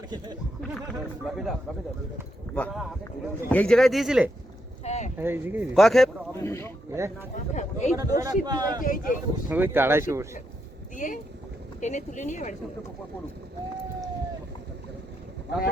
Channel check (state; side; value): normal; both; correlation 0.81